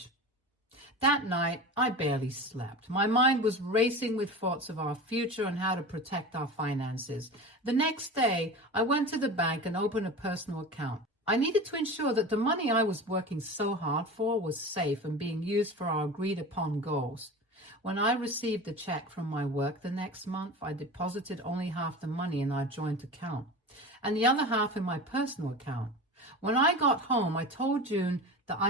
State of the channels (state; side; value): normal; both; correlation 0.32